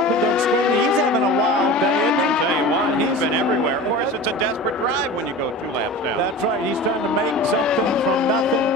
against Skinny. He's having a wild day, isn't he? I'll tell you what, he's been everywhere. Of course, it's a desperate drive when you go 2 laps down. That's right. He's trying to make something from nothing.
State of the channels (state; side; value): normal; both; correlation 0.35